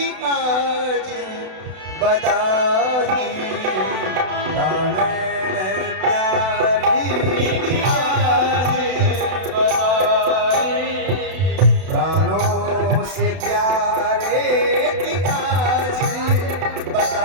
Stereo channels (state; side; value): late; left; 32 ms